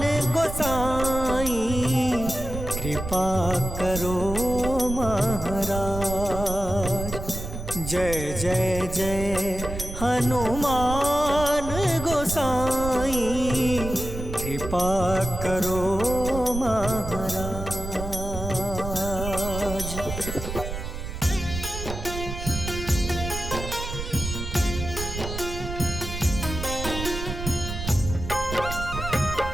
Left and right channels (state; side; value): noise; right; rumble, 7 dB below the sound